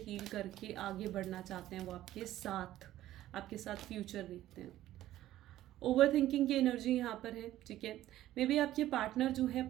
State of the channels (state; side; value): quieter; left; 14.0 dB